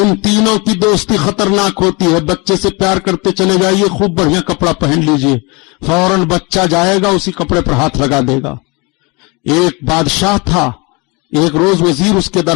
तीनों की दोस्ती खतरनाक होती है। बच्चे से प्यार करते चले जाइए, खूब बढ़िया कपड़ा पहन लीजिए, फौरन बच्चा जाएगा उसी कपड़े पर हाथ लगा देगा। एक बादशाह था, एक रोज वजीर उसके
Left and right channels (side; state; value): right; quieter; 27.9 dB